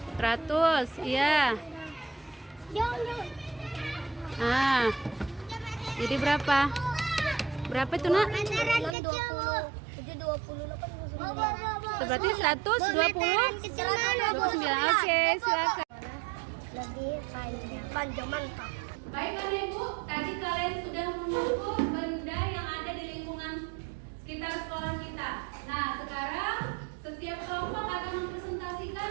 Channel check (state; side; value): drops out; left; at 9.0 s